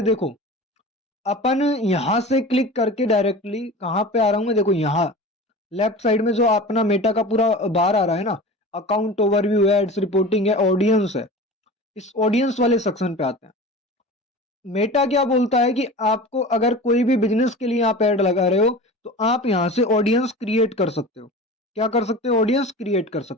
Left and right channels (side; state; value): both; normal; correlation 0.35